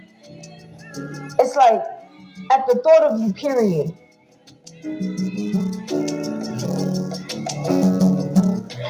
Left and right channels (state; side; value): identical; both; correlation 1.00